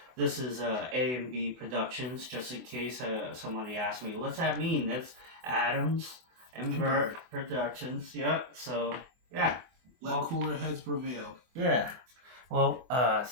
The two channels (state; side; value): late; left; 24 ms